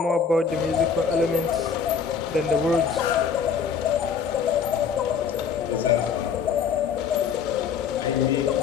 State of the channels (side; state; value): right; quieter; 6.5 dB